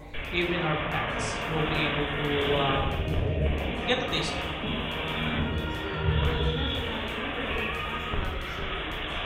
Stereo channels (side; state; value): both; identical; correlation 1.00